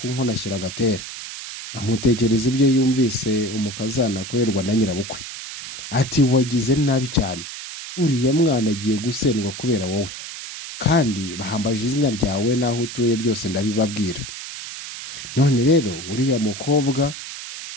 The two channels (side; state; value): right; noise; hiss, 10 dB below the sound